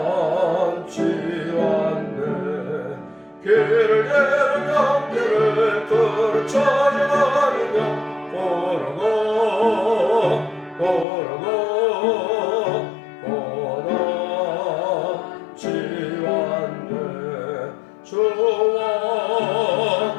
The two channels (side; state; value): right; drops out; at 11.1 s